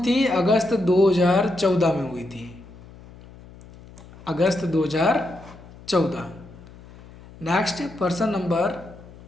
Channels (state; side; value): noise; left; hum, 20 dB below the sound